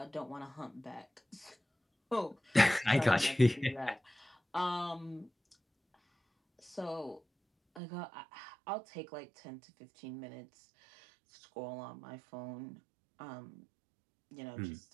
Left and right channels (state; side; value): drops out; left; at 7.8 s